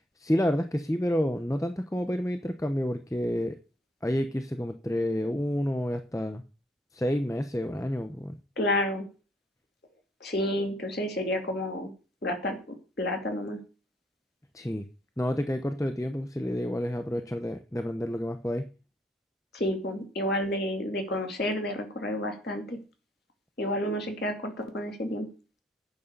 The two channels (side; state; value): both; normal; correlation 0.69